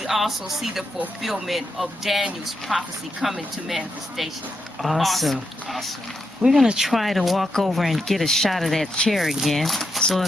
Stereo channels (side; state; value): both; normal; correlation 0.83